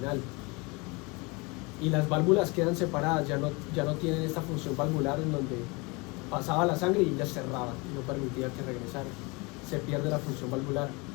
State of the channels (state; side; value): quieter; right; 27.3 dB